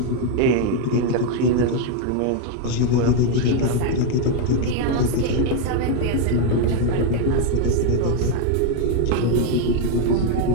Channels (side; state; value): both; different; correlation 0.00